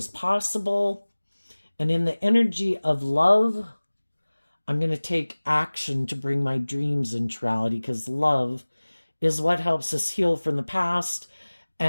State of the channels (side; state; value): both; inverted; correlation -1.00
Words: possible. And in the energy of love, I'm going to take action to bring my dreams into reality, because love is what helps us heal from the past